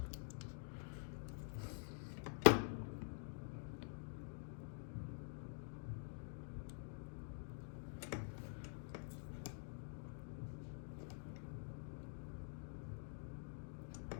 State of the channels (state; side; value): silent; right; digital silence